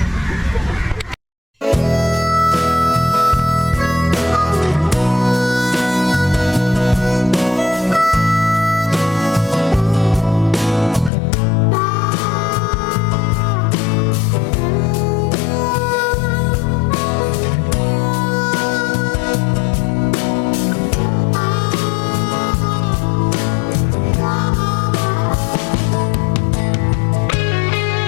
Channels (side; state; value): right; drops out; at 11.1 s